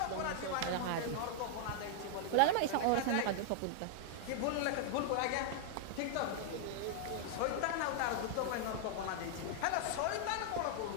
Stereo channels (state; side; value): different; both; correlation -0.01